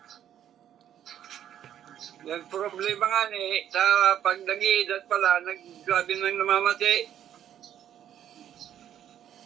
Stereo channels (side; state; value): left; quieter; 10.4 dB